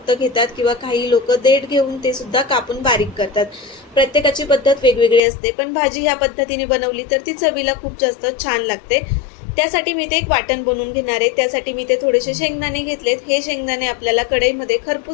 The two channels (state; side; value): drops out; right; at 5.2 s